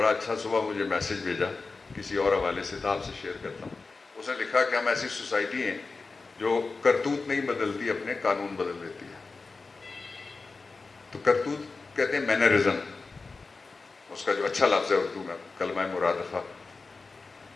اچھا صبح مجھے میسج بھیجا کسی اور حوالے سے, تو آپ سے شیئر کرتا ہوں. اس نے لکھا کہ ہم ایسی سوسائٹی ہیں جو کرتوت نہیں بدلتی, اپنے قانون بدل دیتی ہے. تو کرتوت کہتے ہیں مینرزم, اس کا جو اچھا لفظ ہے اردو میں کلمہ مرادفہ,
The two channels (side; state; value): right; quieter; 4.0 dB